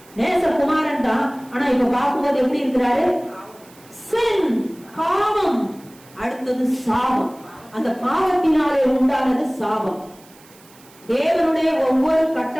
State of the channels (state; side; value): noise; right; hiss, 26 dB below the sound